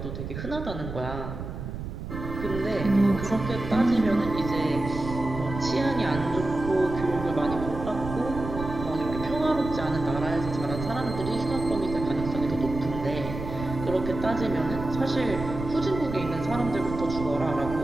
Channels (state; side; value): noise; right; rumble, 8 dB below the sound